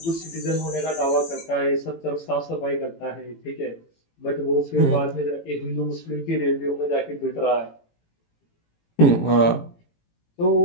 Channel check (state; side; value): late; right; 18 ms